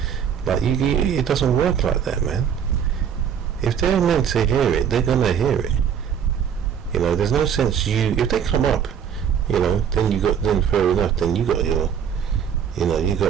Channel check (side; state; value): left; quieter; 8.1 dB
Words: Like, it doesn't work like that, man. If they're meant to hear it, they're gonna hear it. There's no sense if they come up, then fair enough, then you got your, you